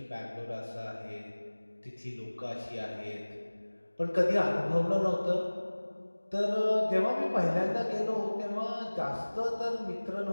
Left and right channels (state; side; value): inverted; both; correlation -1.00